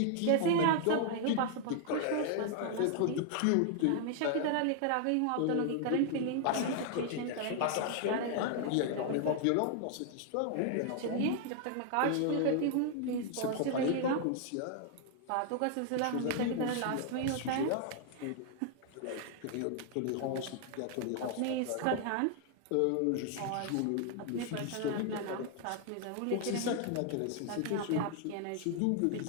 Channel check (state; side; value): different; both; correlation 0.00